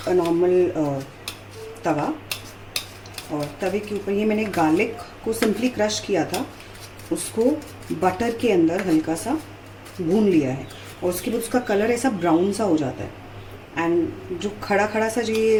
a normal तवा, और तवे के ऊपर ये मैंने गार्लिक को सिंपली क्रश किया था, उसको बटर के अंदर हल्का सा भून लिया है। और उसके बाद उसका कलर ऐसा ब्राउन सा हो जाता है। एंड जो खड़ा खड़ा सा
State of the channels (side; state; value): both; identical; correlation 1.00